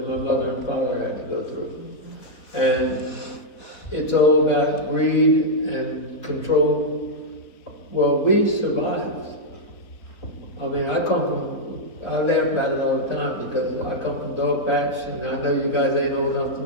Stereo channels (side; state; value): right; late; 4.1 ms